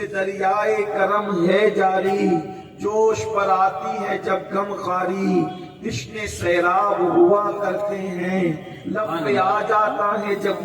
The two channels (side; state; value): both; identical; correlation 1.00